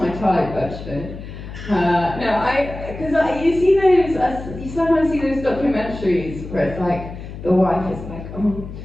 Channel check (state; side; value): noise; left; hum, 11 dB below the sound